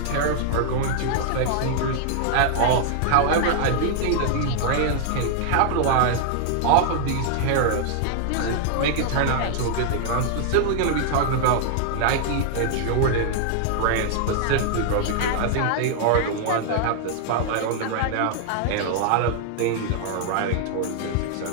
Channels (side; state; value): both; different; correlation 0.00